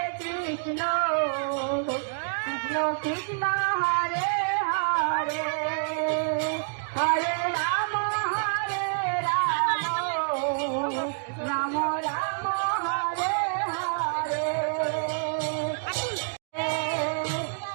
Krishna Krishna Krishna Hare Hare Hare Ram Ram Ram Hare Hare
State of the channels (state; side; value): silent; left; digital silence